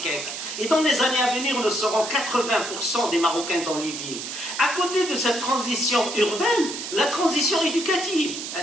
Et dans les années à venir, nous serons 80% des Marocains dans les villes. À côté de cette transition urbaine, la transition éducative,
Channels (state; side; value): noise; right; hiss, 7 dB below the sound